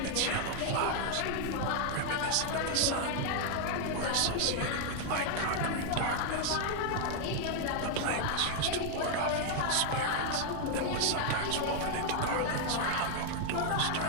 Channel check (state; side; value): different; both; correlation 0.00